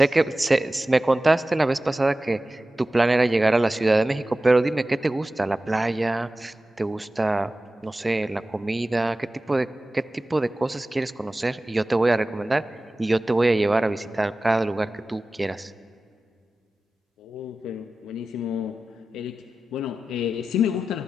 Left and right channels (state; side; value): normal; both; correlation 0.95